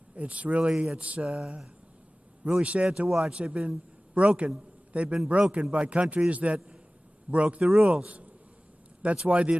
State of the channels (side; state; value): both; normal; correlation 0.97